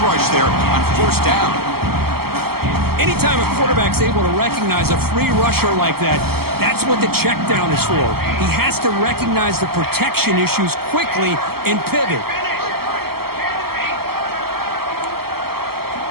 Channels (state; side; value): late; left; 0.95 ms